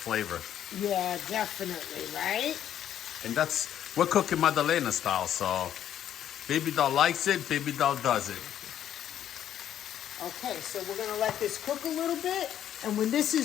Yeah, definitely, right? And we're cooking Madalena style, so baby doll likes it, baby doll does it. Okay, so we're going to let this cook a little bit. And when this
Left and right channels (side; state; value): right; quieter; 10.5 dB